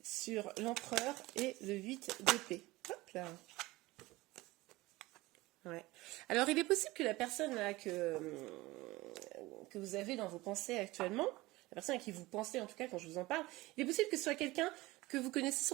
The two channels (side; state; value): left; quieter; 20.0 dB